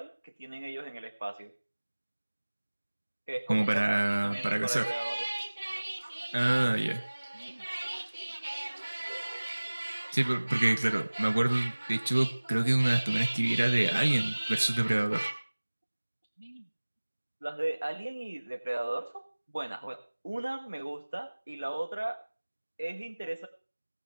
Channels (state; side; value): inverted; both; correlation -1.00